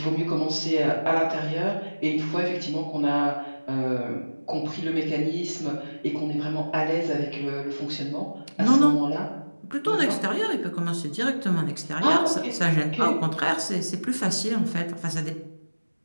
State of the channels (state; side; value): inverted; both; correlation -1.00